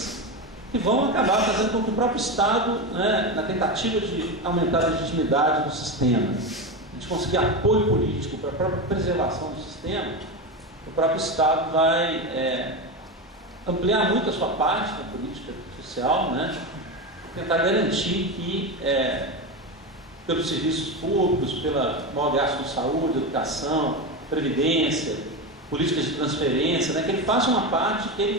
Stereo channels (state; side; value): normal; both; correlation 0.18